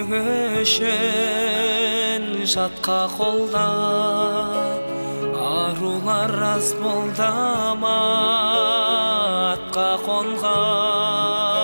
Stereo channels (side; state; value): both; inverted; correlation -1.00